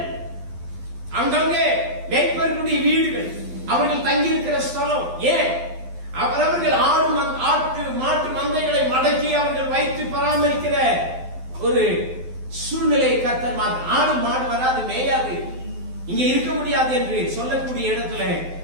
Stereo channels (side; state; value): left; late; 12 ms